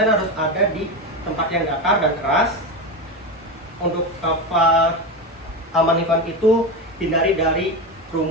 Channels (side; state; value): both; normal; correlation 0.18